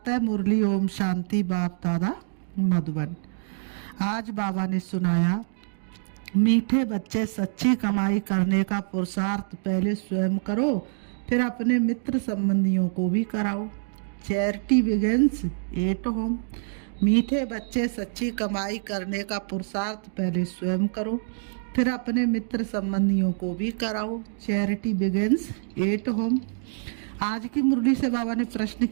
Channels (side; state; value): left; silent; digital silence